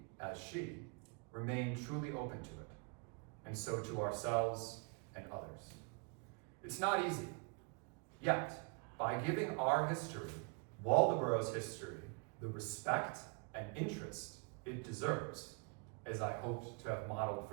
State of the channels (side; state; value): left; quieter; 35.0 dB